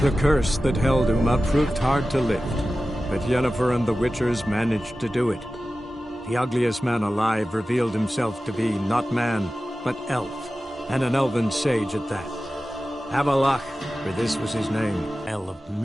The curse that held Uma proved hard to lift, but Yennefer and the Witchers managed to do it. The ugliest man alive revealed himself to be not man, but elf, and an elven sage at that. Avalach, for this was his name, El of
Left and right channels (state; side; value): normal; both; correlation 0.95